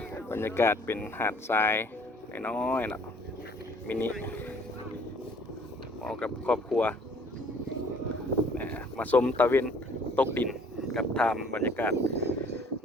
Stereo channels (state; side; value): normal; both; correlation 0.56